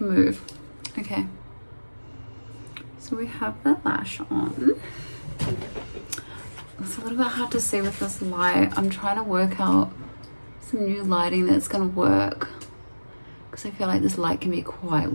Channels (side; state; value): both; inverted; correlation -1.00